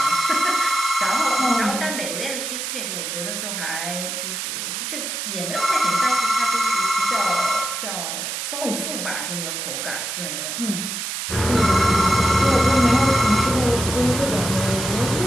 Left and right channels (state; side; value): noise; right; hiss, 4 dB below the sound